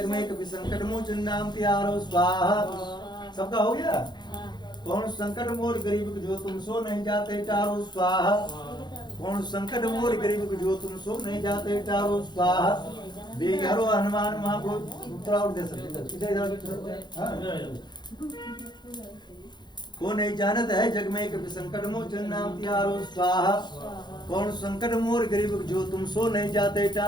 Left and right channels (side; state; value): right; late; 0.21 ms